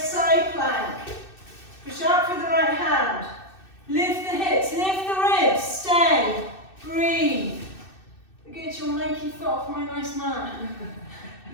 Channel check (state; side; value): late; right; 2.6 ms